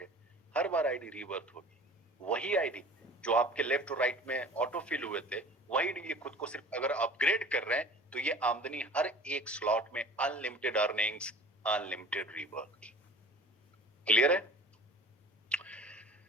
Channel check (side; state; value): both; normal; correlation 0.43